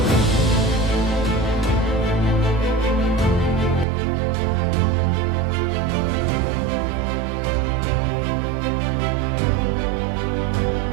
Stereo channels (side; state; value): left; drops out; at 3.9 s